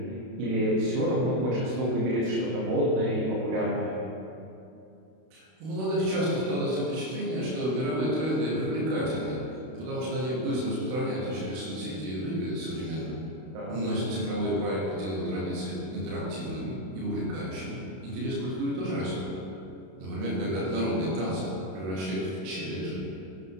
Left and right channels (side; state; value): left; late; 32 ms